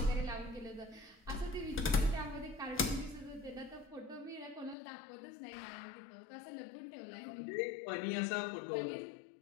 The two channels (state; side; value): drops out; right; at 4.8 s